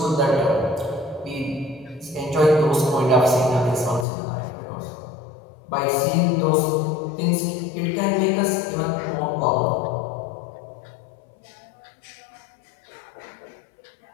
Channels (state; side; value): drops out; right; at 4.0 s